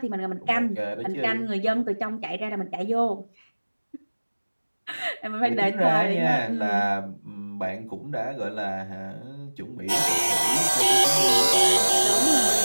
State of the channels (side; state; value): both; inverted; correlation -1.00